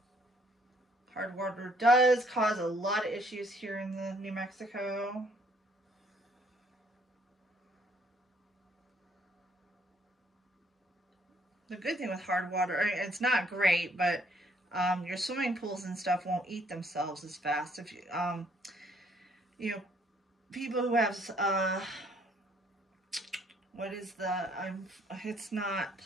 Hard water does cause a lot of issues here in the New Mexico. The good thing with hard water, I mean, it's not great, but your swimming pools and stuff won't eat themselves as fast. If you know, people who have what is the it's not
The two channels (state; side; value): normal; both; correlation 0.65